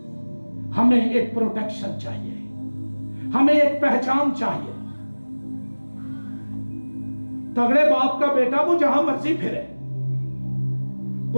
ہمیں ایک پروٹیکشن چاہیے، ہمیں ایک پہچان چاہیے۔ تگڑے باپ کا بیٹا وہ جہاں مرضی پھرے،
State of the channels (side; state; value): both; inverted; correlation -1.00